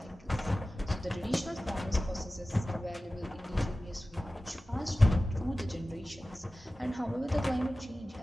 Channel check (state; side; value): normal; both; correlation 0.96